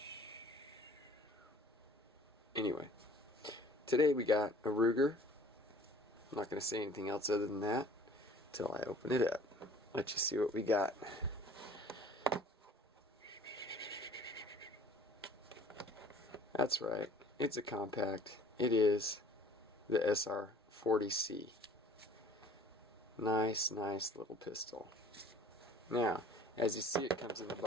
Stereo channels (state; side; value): normal; both; correlation 0.51